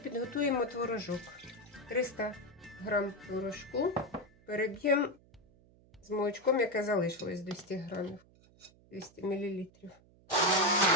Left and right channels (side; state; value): right; noise; hum, 28 dB below the sound